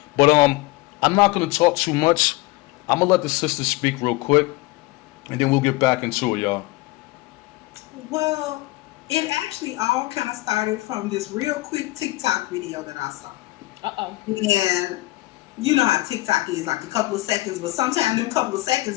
But I'm not going to talk too much. I'm gonna let the sisters speak real quick, and then we'll get back into it, y'all. Well, it actually all kind of started from this real quick TikTok video that I saw. Uh-oh. And you know how TikTok is, like a couple of seconds, but sometimes them couple of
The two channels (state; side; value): quieter; right; 20.1 dB